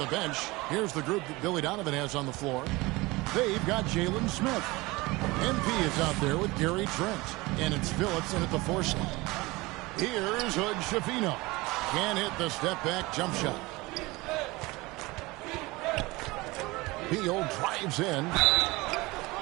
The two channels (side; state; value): left; quieter; 22.1 dB